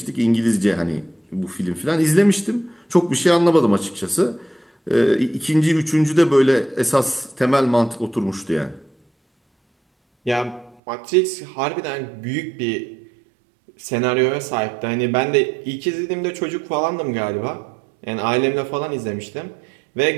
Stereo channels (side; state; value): left; drops out; at 10.8 s